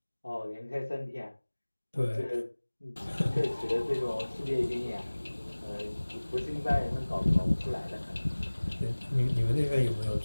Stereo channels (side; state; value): both; inverted; correlation -1.00